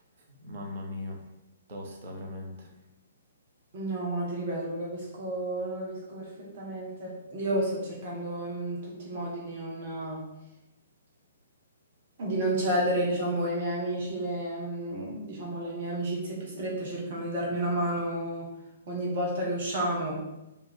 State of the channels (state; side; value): inverted; both; correlation -0.33